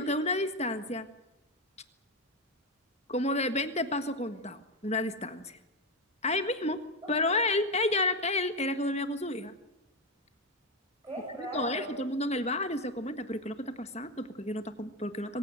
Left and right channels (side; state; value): both; normal; correlation 0.12